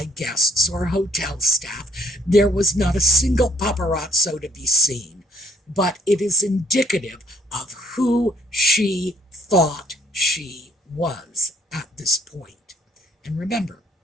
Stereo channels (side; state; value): both; normal; correlation 0.64